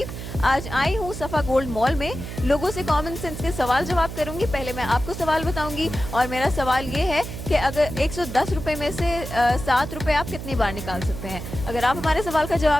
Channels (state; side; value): noise; right; hum, 8 dB below the sound